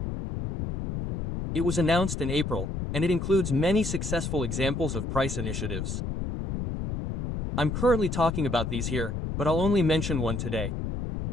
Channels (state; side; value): noise; left; rumble, 4 dB below the sound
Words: It was announced in April, and it includes many successful examples of price initiatives. I'm currently talking about these here, but I'll only mention one today.